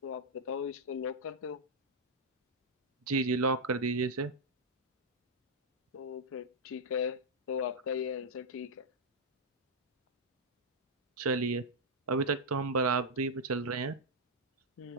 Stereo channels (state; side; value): normal; both; correlation -0.06